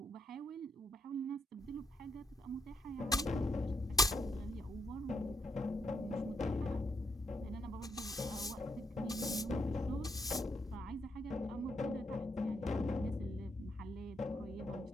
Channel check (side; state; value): both; normal; correlation 0.77